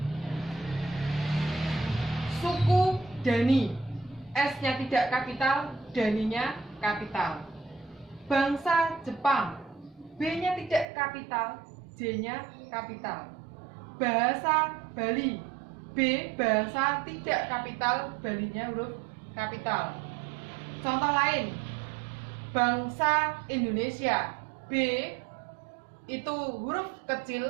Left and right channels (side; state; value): left; drops out; at 10.9 s